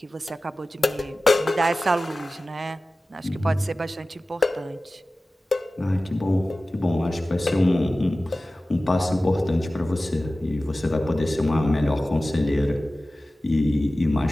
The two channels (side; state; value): both; normal; correlation 0.96